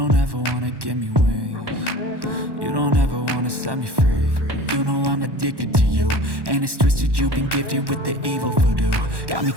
ever wanna give me wings. You don't ever wanna set me free. You know I'm addicted to you, and it's twisted, you've been gifted with the evil voodoo. Got me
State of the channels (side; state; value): left; late; 1.1 ms